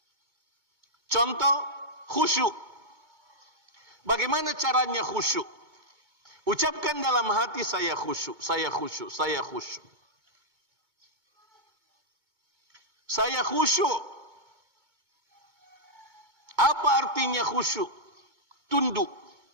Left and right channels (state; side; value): late; left; 2.2 ms